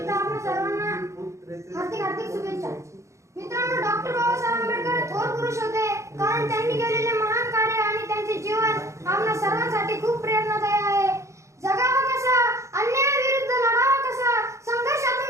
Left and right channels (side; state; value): left; late; 0.14 ms